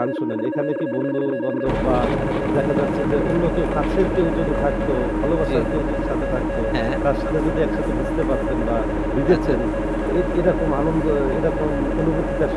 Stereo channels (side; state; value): both; identical; correlation 1.00